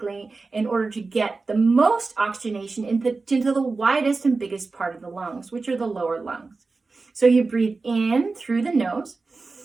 in order to get the most oxygenation into the widest and biggest part of the lungs, which are the lower lungs. So you breathe in through the nose.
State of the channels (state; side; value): quieter; left; 3.9 dB